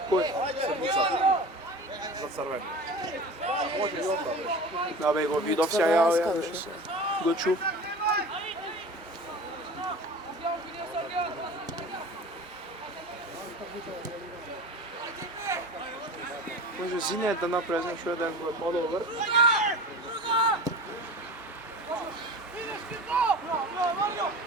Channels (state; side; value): normal; both; correlation 0.35